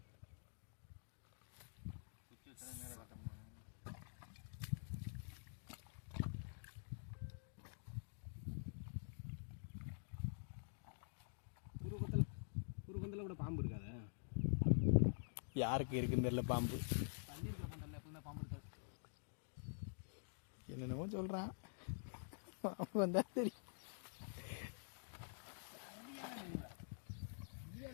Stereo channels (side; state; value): right; silent; digital silence